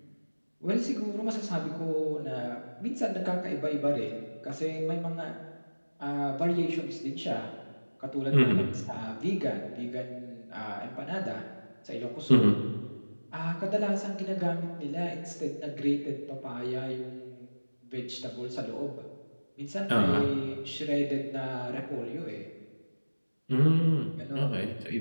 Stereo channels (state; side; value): inverted; both; correlation -1.00